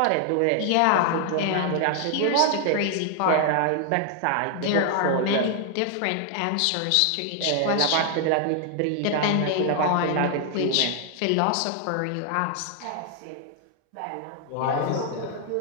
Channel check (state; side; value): different; both; correlation 0.00